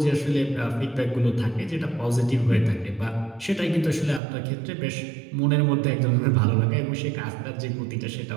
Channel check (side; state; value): left; drops out; at 4.2 s